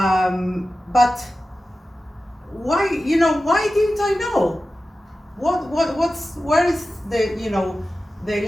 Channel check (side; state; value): both; normal; correlation 0.94